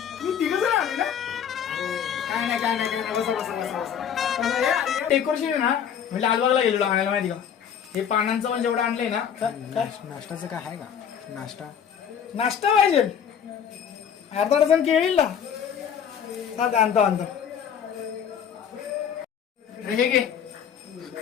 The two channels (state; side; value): quieter; right; 8.2 dB